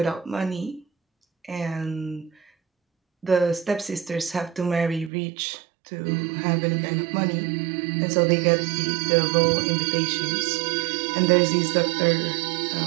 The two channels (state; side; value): drops out; left; at 5.1 s